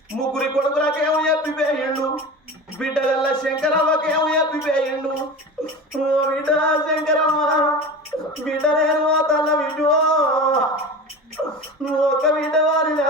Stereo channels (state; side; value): normal; both; correlation 0.31